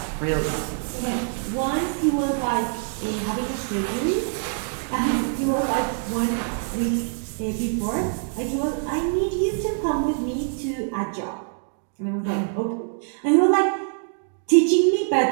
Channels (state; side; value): silent; left; 62 dB below the other